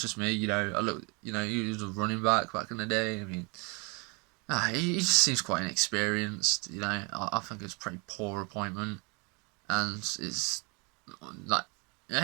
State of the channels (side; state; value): left; quieter; 31.0 dB